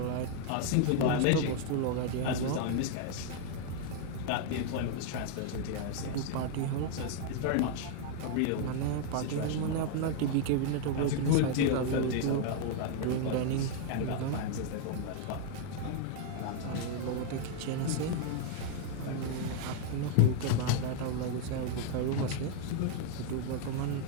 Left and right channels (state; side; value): different; both; correlation 0.00